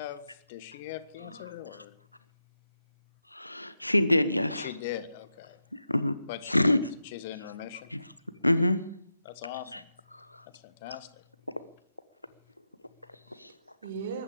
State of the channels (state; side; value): inverted; both; correlation -0.87